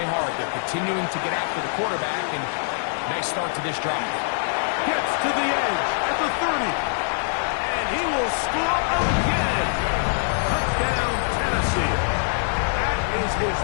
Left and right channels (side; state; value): right; silent; digital silence